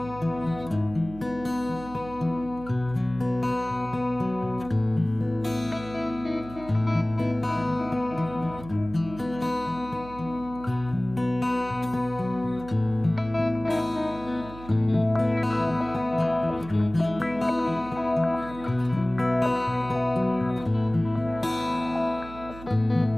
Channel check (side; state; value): right; noise; hum, 15 dB below the sound